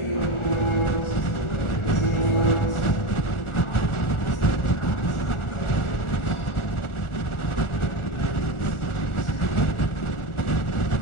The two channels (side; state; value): right; late; 1.4 ms